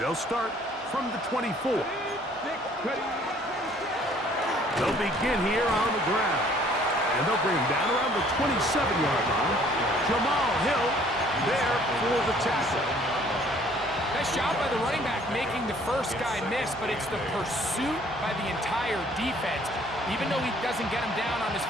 They'll start from the 24. They'll begin here on the ground. And they'll bring him down around the 27-yard line. Jamal Hill there for the tackle. Nice job by the running back making the first guy miss, but it's the pursuit by the entire defense. Even though he doesn't get him down on his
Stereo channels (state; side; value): normal; both; correlation 0.58